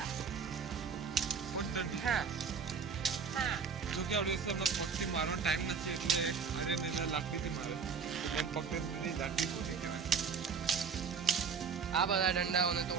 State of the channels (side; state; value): left; quieter; 5.9 dB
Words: પણ હા હા. જો કે આપણે અમને પગથી મારવાનો ટાઈમ નથી એટલે આર્યન એના લાકડીથી મારે તો મેં પગથી લાકડી ફૂટી કહેવાય. આ બધા દંડાઓને